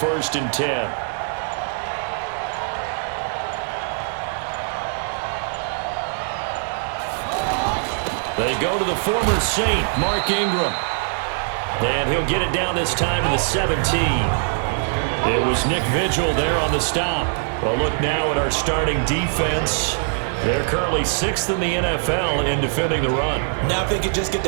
and 10. They go to the former Saint, Mark Ingram. And he'll get it down this time to the 17. It was Nick Vigil there on the stop. Well, look now at our starting defense. They're currently 6th in the NFL in defending the run. Now if they could just get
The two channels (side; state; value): left; silent; 63 dB below the other